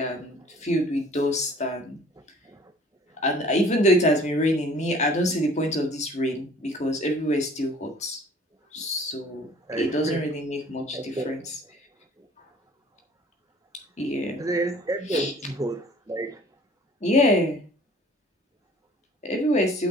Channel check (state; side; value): normal; both; correlation 0.52